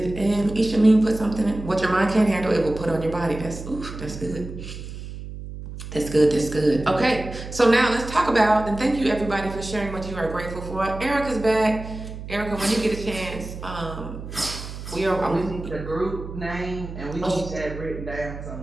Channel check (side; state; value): right; noise; hum, 10 dB below the sound